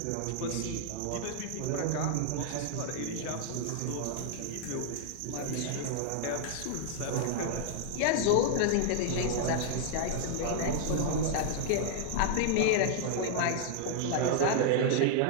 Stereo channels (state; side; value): different; both; correlation 0.00